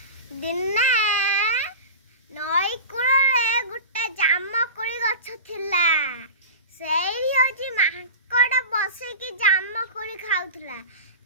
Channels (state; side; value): inverted; both; correlation -0.30